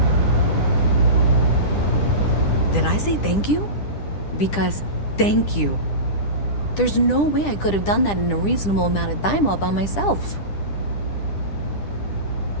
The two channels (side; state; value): right; late; 10 ms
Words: Did I say thank you? Because thank you. There's no way I could have done that in a reasonable amount of time all by myself.